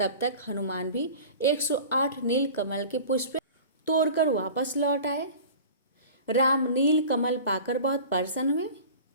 तक हनुमान भी 108 नीलकमल के पुष्प तोड़कर वापस लौट आए। राम नीलकमल पाकर बहुत प्रसन्न हुए।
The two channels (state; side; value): inverted; both; correlation -0.39